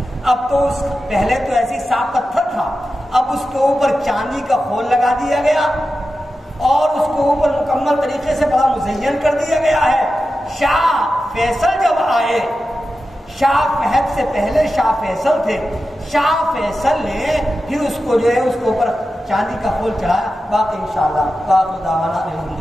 اب تو اس پہلے تو ایسی صاف پتھر تھا، اب اس کے اوپر چاندی کا خول لگا دیا گیا اور اس کے اوپر مکمل طریقے سے بڑا مزین کر دیا گیا ہے۔ شاہ فیصل جب آئے، شاہ فہد سے پہلے شاہ فیصل تھے، شاہ فیصل نے پھر اس کو جو ہے اس کے اوپر چاندی کا خول چڑھایا۔ باقی انشاءاللہ باقی دعوانا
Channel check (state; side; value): normal; both; correlation 0.92